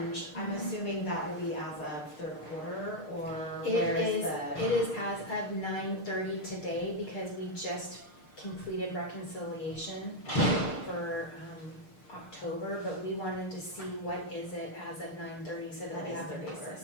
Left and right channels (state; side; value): late; right; 6.6 ms